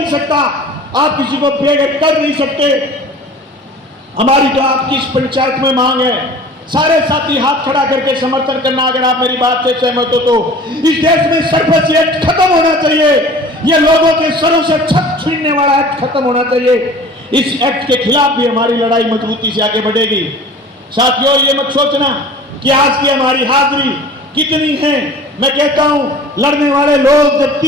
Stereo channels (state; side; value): normal; both; correlation 0.44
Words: सकता, आप किसी को बेघर कर नहीं सकते। हमारी तो आपकी इस पंचायत में मांग है, सारे साथी हाथ खड़ा करके समर्थन करना। अगर आप मेरी बात से सहमत हो तो इस देश में सरपंच एक्ट खत्म होना चाहिए। ये लोगों के सरों से छत छीनने वाला एक्ट खत्म होना चाहिए। इस एक्ट के खिलाफ भी हमारी लड़ाई मजबूती से आगे बढ़ेगी। साथियों, ये मत सोचना कि आज की हमारी हाजिरी कितनी है। मैं कहता हूं, लड़ने वाले लोग जब